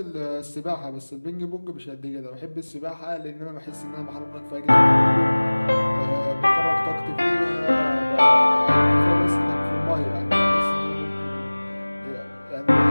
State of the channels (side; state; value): both; inverted; correlation -1.00